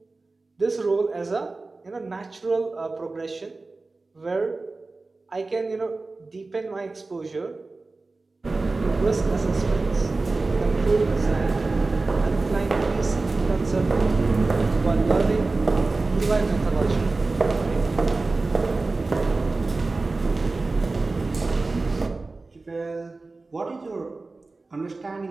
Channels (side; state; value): left; quieter; 3.5 dB